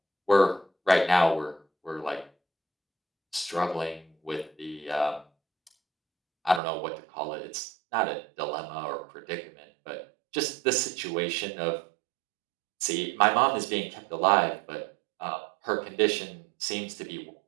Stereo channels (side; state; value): left; drops out; at 6.6 s